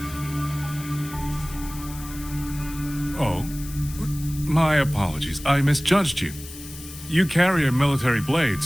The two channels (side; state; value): left; noise; hiss, 15 dB below the sound